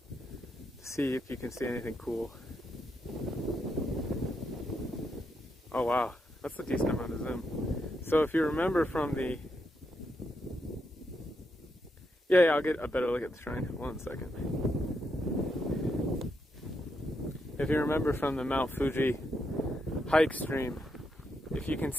to see if you can see anything cool. Oh wow, that's a decent amount of zoom. So if you remember from the... Yeah, I'll get a better look at the shrine. 1 second. If you remember from the Mount Fuji hike stream, if you can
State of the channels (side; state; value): both; normal; correlation 0.81